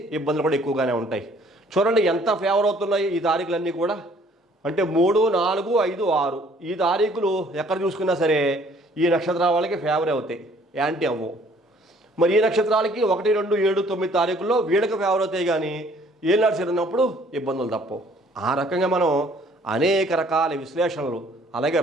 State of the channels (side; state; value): both; normal; correlation 0.59